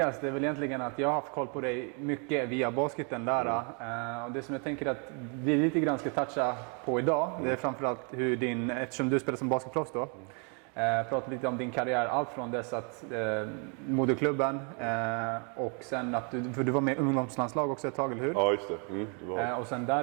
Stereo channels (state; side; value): quieter; left; 37.7 dB